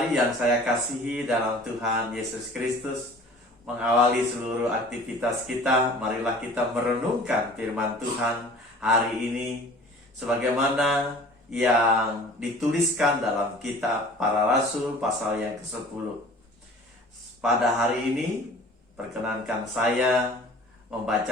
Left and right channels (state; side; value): normal; both; correlation 0.46